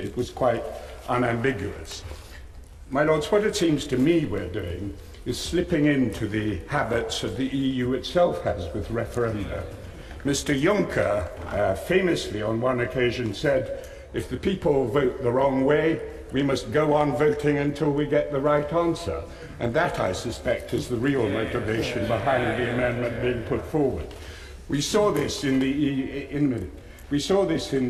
was quite unambiguous. My Lords, what it seems to me we're doing is slipping into the habits that the EU itself has with referenda. Mr. Juncker famously on one occasion said, if the people vote the wrong way, we must go on voting until we get the right answer. And that, I suspect, is the real motivation behind the amendment being put forward. We saw this in the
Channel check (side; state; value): both; identical; correlation 1.00